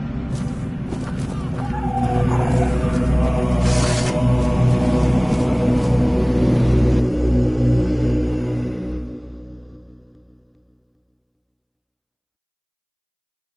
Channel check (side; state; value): both; identical; correlation 1.00